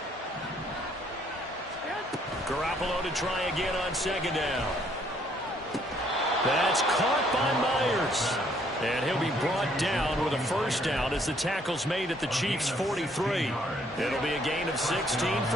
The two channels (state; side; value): normal; both; correlation 0.66